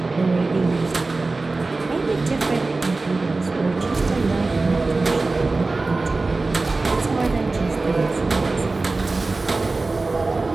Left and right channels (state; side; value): quieter; left; 3.5 dB